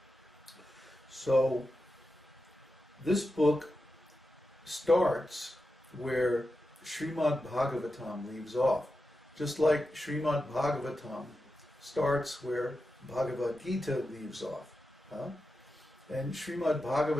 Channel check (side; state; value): both; normal; correlation 0.90